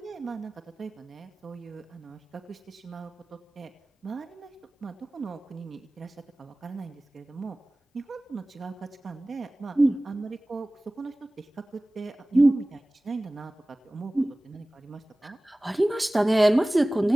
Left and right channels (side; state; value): both; normal; correlation 0.98